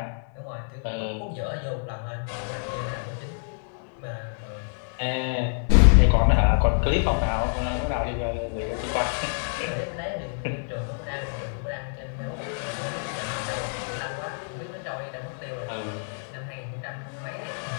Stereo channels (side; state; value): right; silent; digital silence